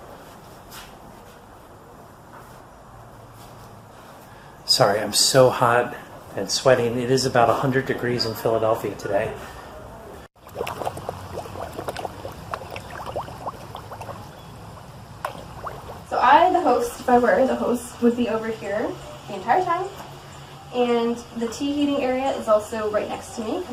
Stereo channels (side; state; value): both; identical; correlation 1.00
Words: Sorry, I'm so hot and sweating. It is about 100 degrees in Philadelphia today. So I, the host, if I were the host, would be over here the entire time. And the tea heating area is also right next to me